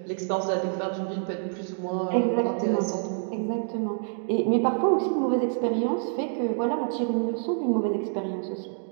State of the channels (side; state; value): left; silent; digital silence